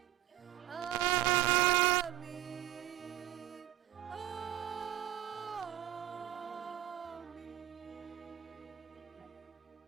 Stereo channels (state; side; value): quieter; left; 13.4 dB